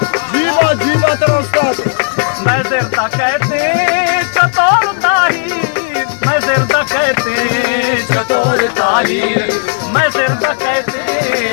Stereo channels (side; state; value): right; silent; digital silence